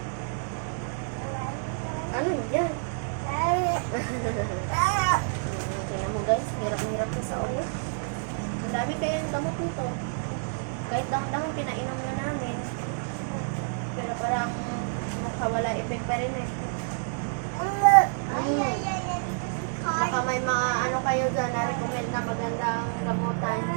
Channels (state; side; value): silent; left; digital silence